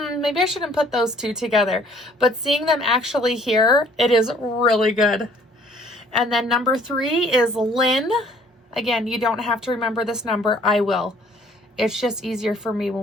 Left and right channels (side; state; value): both; normal; correlation 0.58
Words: maybe I shouldn't put those 2 together. But seeing them actually here, it is really good. And then number 3 is Lynn. Again, you don't have to remember this number. I will. It's just easier for me